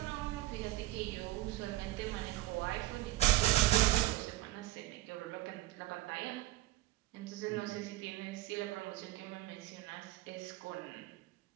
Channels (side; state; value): left; quieter; 17.1 dB